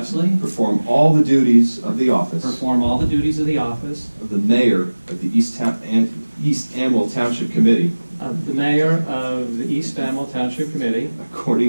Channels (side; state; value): both; inverted; correlation -1.00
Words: perform all the duties of the office perform all the duties of the office of the mayor of the East Amwell Township Committee of the mayor of the East Amwell Township Committee